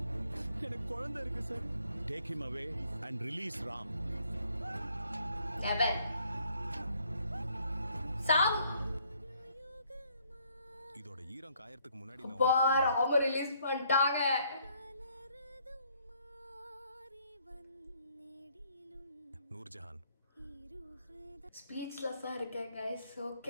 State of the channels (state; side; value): inverted; both; correlation -0.67